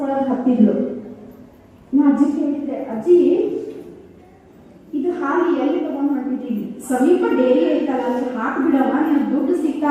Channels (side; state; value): both; identical; correlation 1.00